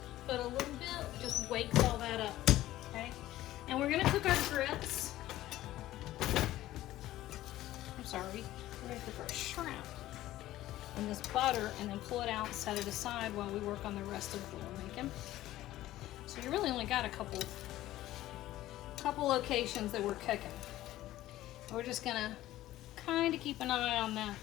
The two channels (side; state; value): right; quieter; 15.0 dB